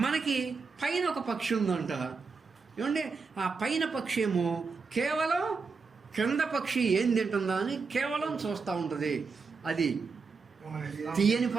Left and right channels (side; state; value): left; quieter; 4.8 dB